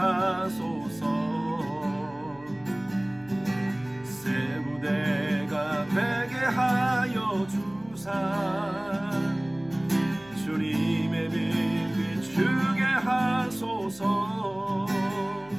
새 부대가 되게 하여 주사 주님의 빛 비추게 하소서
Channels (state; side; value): noise; left; hum, 25 dB below the sound